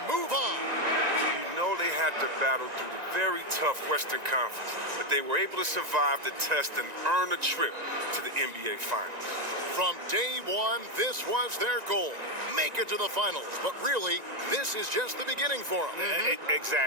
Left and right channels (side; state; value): left; late; 1.9 ms